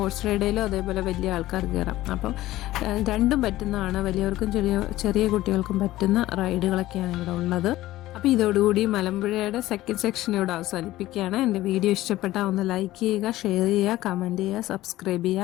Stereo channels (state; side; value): quieter; right; 16.0 dB